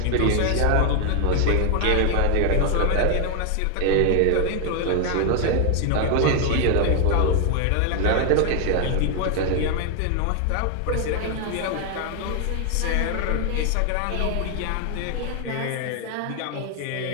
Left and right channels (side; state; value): both; different; correlation 0.00